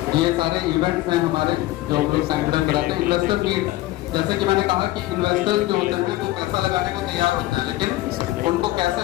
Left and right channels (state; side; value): quieter; right; 16.9 dB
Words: ये सारे इवेंट्स हैं हमारे जो हम लोग साइंड कराते हैं। इन्वेस्टर मीट, जैसे कि मैंने कहा कि इन्वेस्टर्स जो होते हैं वो पैसा लगाने को तैयार होते हैं, लेकिन उनको कैसे